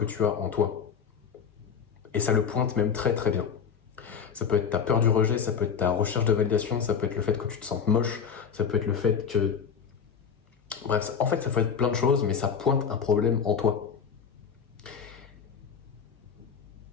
tu as en toi. Et ça le pointe même très très bien. Ça peut être ta peur du rejet, ça peut être ta recherche de validation, ça peut être le fait que tu te sentes moche, ça peut être le fait que... Bref, en fait ça peut être plein de choses, mais ça pointe un problème en toi.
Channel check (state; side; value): quieter; right; 6.8 dB